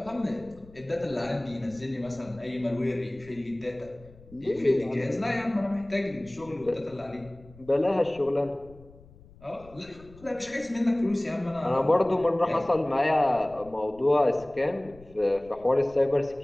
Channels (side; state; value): left; noise; rumble, 23 dB below the sound